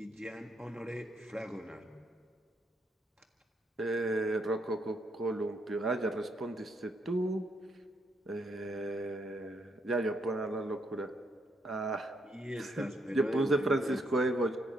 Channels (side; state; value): both; normal; correlation 0.75